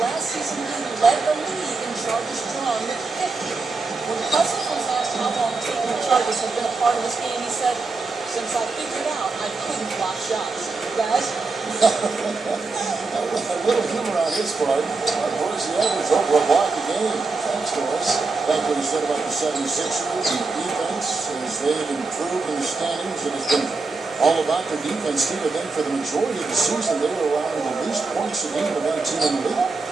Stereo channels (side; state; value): left; quieter; 4.0 dB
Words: season he led the league in charges drawn with 50. When Cousins was asked how long taking charges had been a part of his game, he said, "Since I figured out I couldn't block shots." Guys? A little humor on his part. Of course, he averaged over a block a game. Thanks, Doris. Like what he said about the 76ers, the defense, as they've improved in the standings, it has been all about their defense, too. I think for the majority of the season, they were allowing the least points a game of any team in the league.